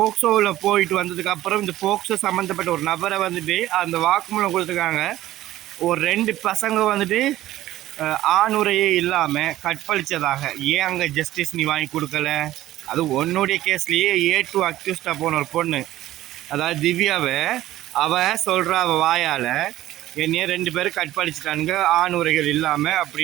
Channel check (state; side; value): quieter; left; 14.8 dB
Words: போயிட்டு வந்ததுக்கப்புறம் இந்த போக்சோ சம்மந்தப்பட்ட ஒரு நபரை வந்துட்டு அந்த வாக்குமூலம் கொடுத்துருக்காங்க. ஒரு 2 பசங்க வந்துட்டு ஆணுரையே இல்லாமல் கற்பழித்ததாக. ஏன் அங்கே ஜஸ்டிஸ் நீ வாங்கி கொடுக்கல? அது உன்னுடைய கேஸ்லேயே A2 அக்யூஸ்டாக போன ஒரு பொண்ணு, அதாவது திவ்யாவை, அவள் சொல்கிறா அவள் வாயால் என்னையே 2 பேரும் கற்பழிச்சிட்டானுங்க ஆணுரைகள் இல்லாமல்